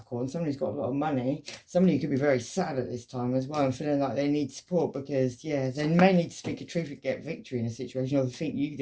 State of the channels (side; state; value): both; identical; correlation 1.00